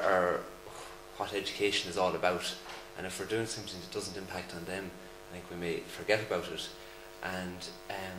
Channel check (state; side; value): identical; both; correlation 1.00